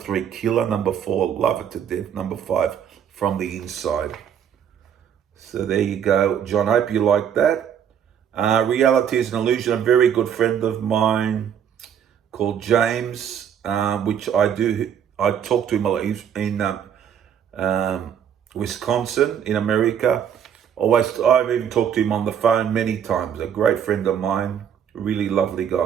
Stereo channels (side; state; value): left; quieter; 8.7 dB